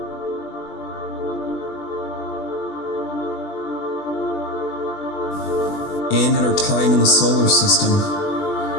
and in our time in the solar system.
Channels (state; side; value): late; right; 20 ms